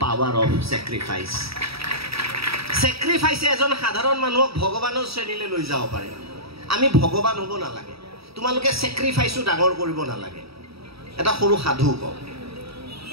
পাৱাৰ অফ চেক্ৰিফাইছে এজন সাধাৰণ মানুহক ভগৱানৰ শ্ৰেণীলৈ লৈ যাব পাৰে আমি ভগৱান হ'ব নালাগে তোমালোকে চেক্ৰিফাইছো ডাঙৰ কৰিব নালাগে এটা সৰু সাধু কওঁ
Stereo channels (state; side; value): late; left; 0.77 ms